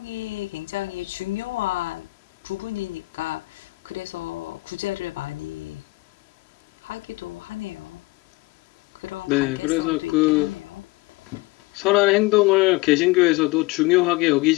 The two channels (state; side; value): quieter; right; 22.4 dB